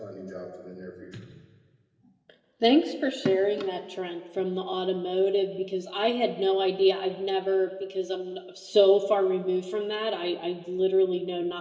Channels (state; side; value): identical; both; correlation 1.00